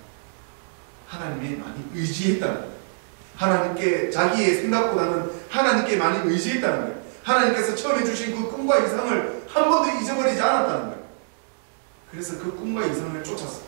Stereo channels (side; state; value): left; silent; 62 dB below the other